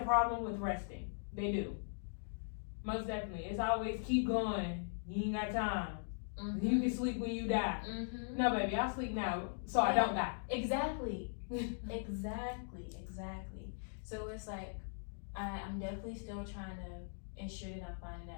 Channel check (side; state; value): right; silent; digital silence